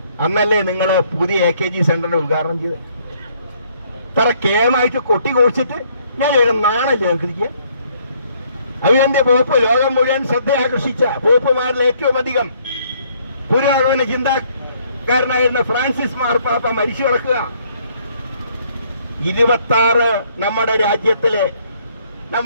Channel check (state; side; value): inverted; both; correlation -0.66